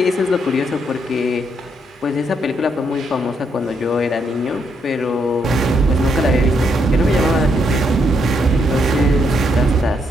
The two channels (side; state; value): both; normal; correlation 0.76